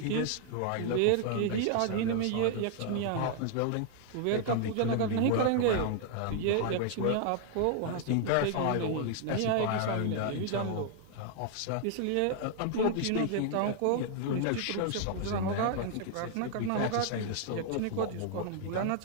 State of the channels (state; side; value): different; both; correlation 0.00